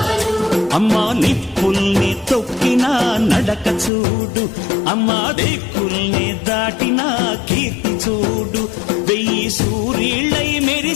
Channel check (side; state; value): right; drops out; at 3.9 s